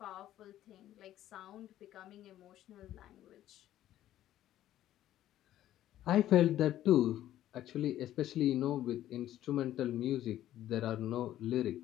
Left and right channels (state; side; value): quieter; right; 12.9 dB